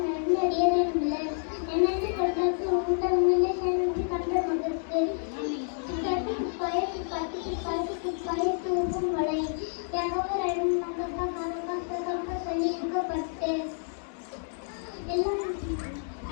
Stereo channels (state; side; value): silent; right; digital silence